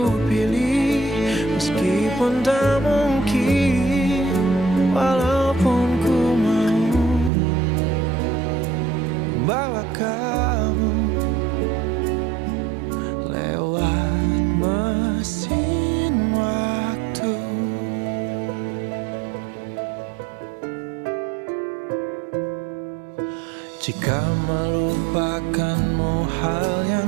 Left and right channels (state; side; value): drops out; left; at 7.3 s